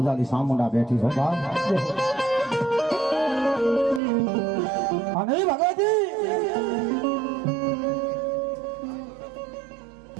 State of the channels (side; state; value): left; drops out; at 4.0 s